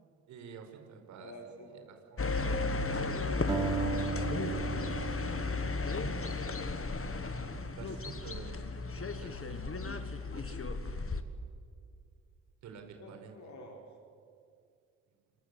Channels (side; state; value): both; normal; correlation 0.42